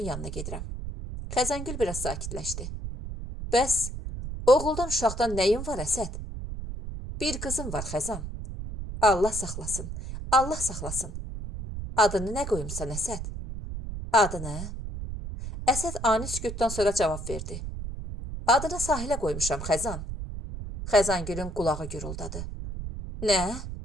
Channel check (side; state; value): right; noise; rumble, 7 dB below the sound